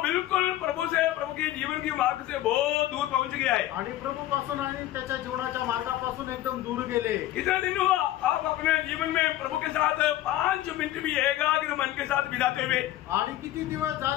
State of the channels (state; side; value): quieter; right; 14.3 dB